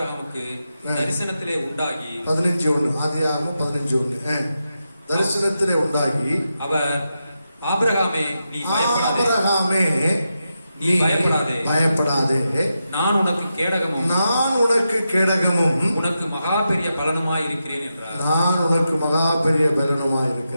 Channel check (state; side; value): inverted; both; correlation -0.87